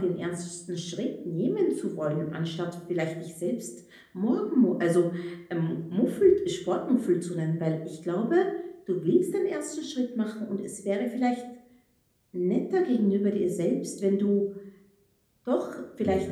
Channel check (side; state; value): both; identical; correlation 1.00